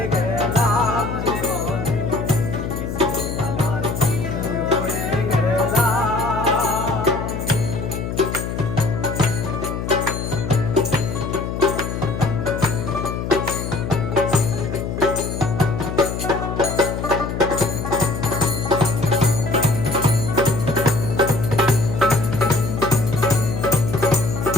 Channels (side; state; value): left; noise; hum, 4 dB below the sound